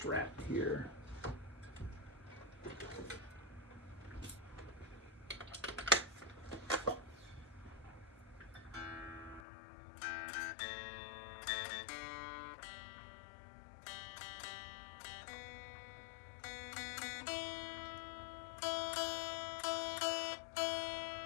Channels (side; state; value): right; drops out; at 9.4 s